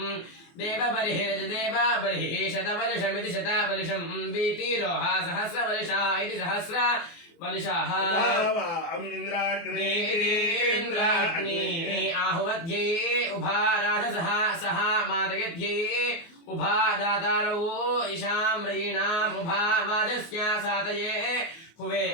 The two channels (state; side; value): late; right; 24 ms